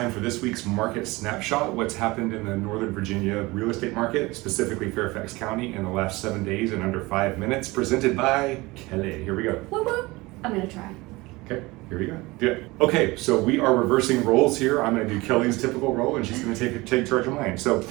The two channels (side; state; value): left; quieter; 22.0 dB